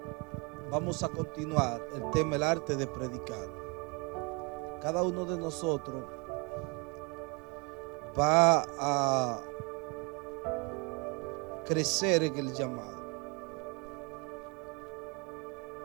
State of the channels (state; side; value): quieter; left; 30.5 dB